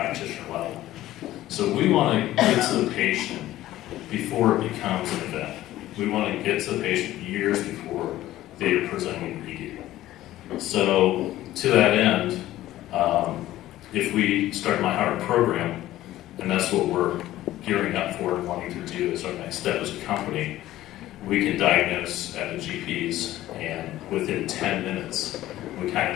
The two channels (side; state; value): right; quieter; 14.8 dB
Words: level. So we want to get to the patient before it becomes an event. We want to get to the patient years before they are presenting ED. So to that end, if we start MyHeart program, and that's what we're gearing up for and wanting to do as our next step as a company, we can diagnose at the GPs, and within 10 minutes, we kind